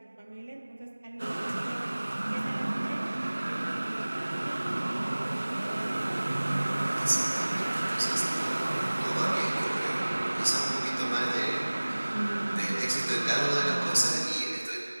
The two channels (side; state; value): both; inverted; correlation -1.00